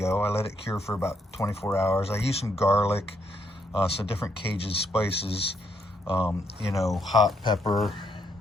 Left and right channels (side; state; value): both; normal; correlation 0.75